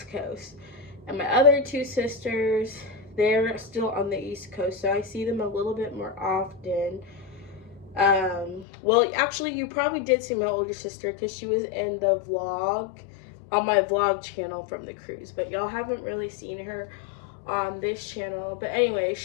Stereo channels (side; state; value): right; drops out; at 8.7 s